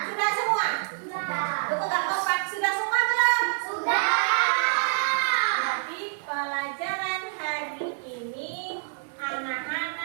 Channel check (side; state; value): left; silent; digital silence